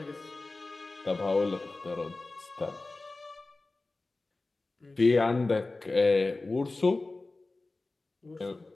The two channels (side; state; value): right; quieter; 3.2 dB